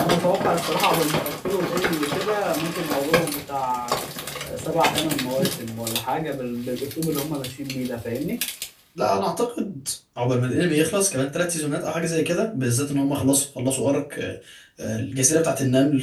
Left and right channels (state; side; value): identical; both; correlation 1.00